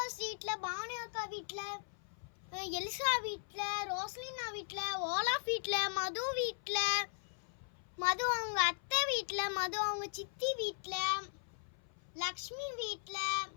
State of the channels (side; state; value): right; silent; 52 dB below the other